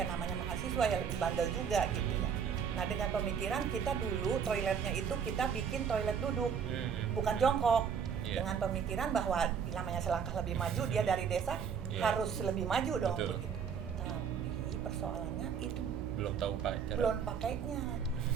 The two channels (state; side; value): quieter; left; 7.1 dB